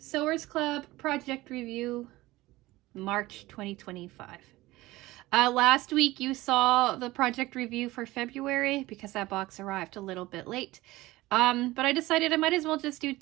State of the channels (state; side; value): quieter; left; 18.7 dB